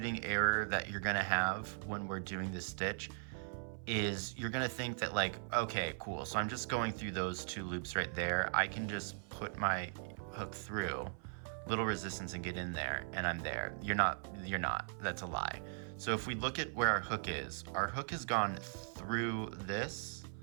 error that you're gonna have when we're doing this stitch is you're gonna think that like, okay, cool, so I'm just going through those 2 loops right there. I can just put my hook through, little resistance, and get in there, and I'm there. You're not, that's a lie. So if we look at where our hook has gone through this,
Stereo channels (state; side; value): silent; left; 52 dB below the other